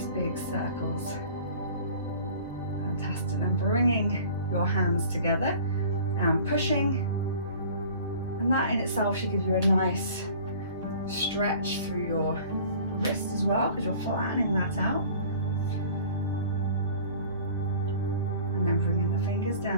big circles. Fantastic. And bringing your hands together and pushing. And that in itself should give you a nice stretch through your wrist as well, because you're flattening that out. And then bringing the fingers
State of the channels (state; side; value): inverted; both; correlation -0.46